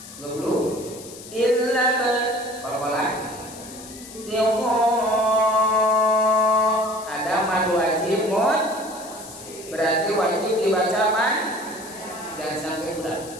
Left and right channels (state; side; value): noise; left; hiss, 16 dB below the sound